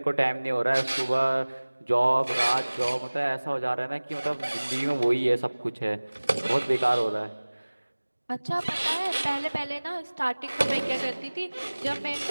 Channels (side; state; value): both; inverted; correlation -1.00